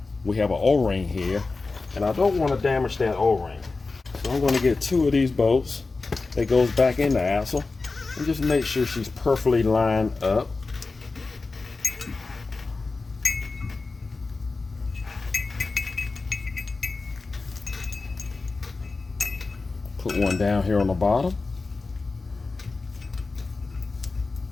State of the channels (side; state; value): right; quieter; 3.8 dB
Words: an O-ring here, and I don't want to damage that O-ring. So I'm going to get 2 of these bolts that goes back in the axle and just make sure she's perfectly lined up. Put one down here on the bottom.